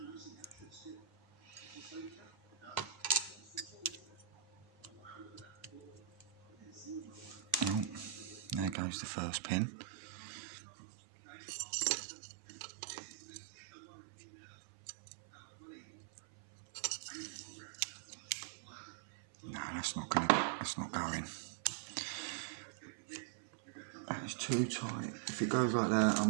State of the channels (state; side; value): drops out; left; at 8.8 s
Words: Oh, there goes the first pin. No, that's not going. That is too tight. If it goes like that,